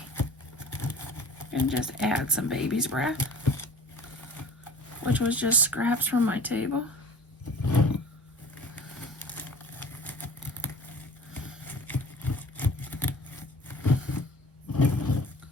And just add some baby's breath, which was just scraps from my table.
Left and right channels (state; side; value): normal; both; correlation 0.43